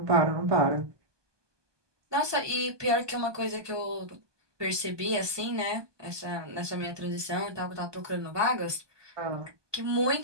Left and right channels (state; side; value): late; left; 1.2 ms